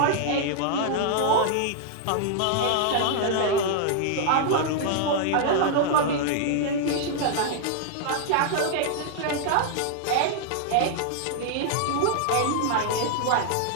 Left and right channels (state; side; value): different; both; correlation -0.01